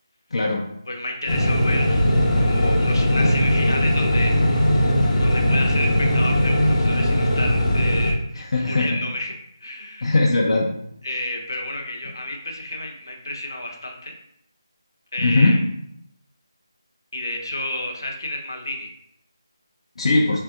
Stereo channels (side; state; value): both; inverted; correlation -0.89